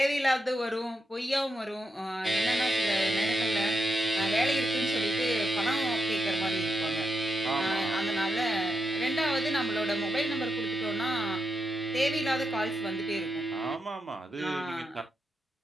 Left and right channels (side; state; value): both; normal; correlation 0.84